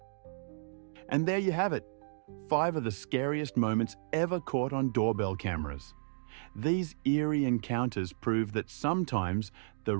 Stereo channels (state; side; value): silent; left; digital silence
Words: And there you have it, 5 of the scariest moments ever caught on doorbell cameras. These eerie encounters prove that sometimes the